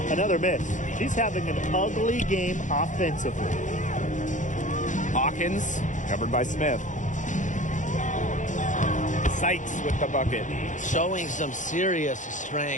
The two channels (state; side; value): late; right; 0.36 ms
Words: Another miss. She's having an ugly game offensively. Hawkins, covered by Smith. Sykes with the bucket. Showing some serious